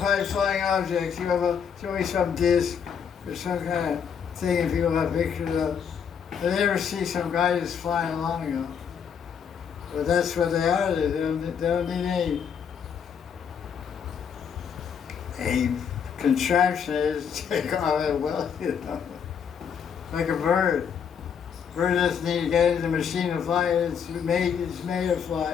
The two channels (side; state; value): right; quieter; 7.4 dB